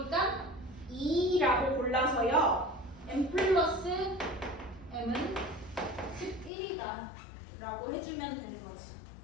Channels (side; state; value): right; drops out; at 6.5 s